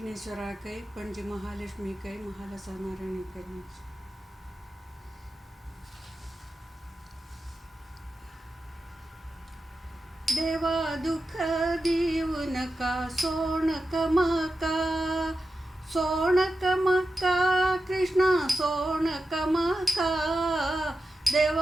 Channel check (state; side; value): normal; both; correlation 0.91